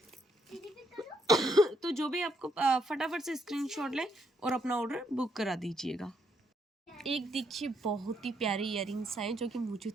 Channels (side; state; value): both; normal; correlation 0.74